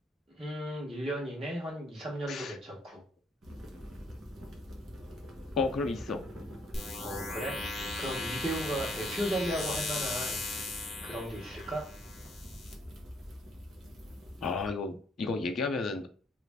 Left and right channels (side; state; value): both; normal; correlation 0.67